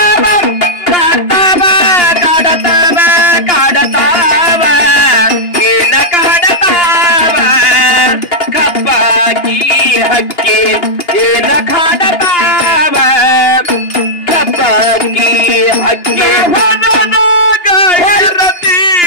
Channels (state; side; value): late; right; 2.8 ms